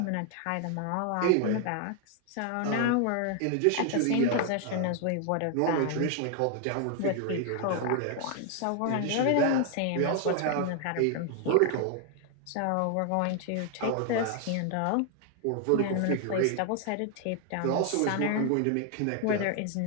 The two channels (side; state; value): both; different; correlation 0.00